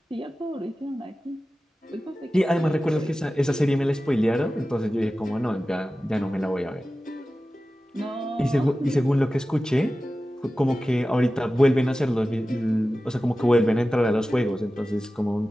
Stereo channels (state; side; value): normal; both; correlation 0.95